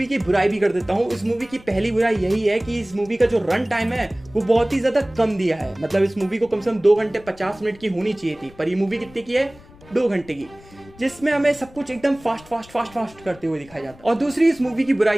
की बुराई भी कर देता हूँ। इस मूवी की पहली बुराई यही है कि इस मूवी का जो रन टाइम है वो बहुत ही ज्यादा कम दिया है। मतलब इस मूवी को कम से कम 2 घंटे 50 मिनट की होनी चाहिए थी, पर ये मूवी कितने की है, 2 घंटे की, जिसमें हमें सब कुछ एकदम फास्ट करते हुए दिखाया जाता है। और दूसरी इस मूवी की बुराई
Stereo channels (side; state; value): left; noise; rumble, 23 dB below the sound